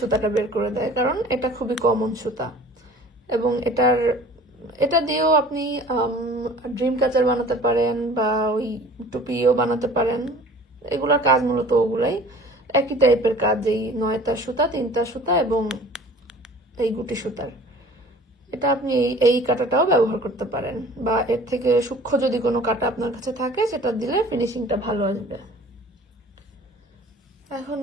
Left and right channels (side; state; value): both; normal; correlation 0.46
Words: বের করে দেয়, কারণ এটা খুবই কমন সুতা। এবং এটা দিয়েও আপনি ড্রিম ক্যাচার বানাতে পারেন বা ওই টুপিও বানাতে পারেন। এগুলোর কাজ মূলত ওগুলাই, একই টাইপের কাজ, এই 9 তার সুতা, 3 তার সুতা এবং এই গুটি সুতার। এটা আপনি এই কাঁটাটাও ব্যবহার করতে পারেন, বা এর থেকে সূক্ষ্ম যদি কোনো কাঁটা আপনার কাছে থাকে সেটা দিলে ফিনিশিংটা ভালো আসবে। এখন